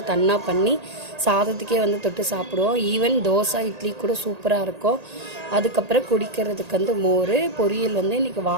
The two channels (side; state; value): left; late; 1.8 ms